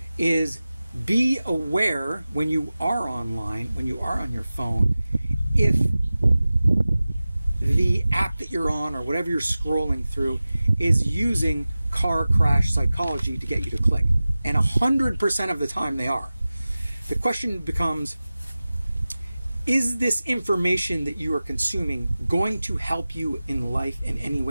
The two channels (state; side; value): inverted; both; correlation -0.97